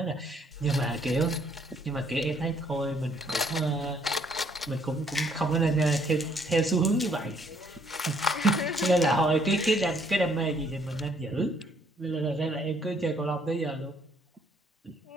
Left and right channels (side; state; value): both; normal; correlation 0.65